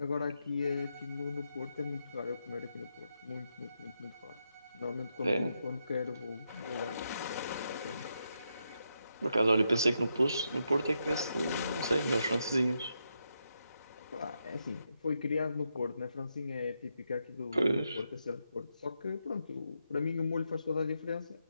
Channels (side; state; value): both; inverted; correlation -0.83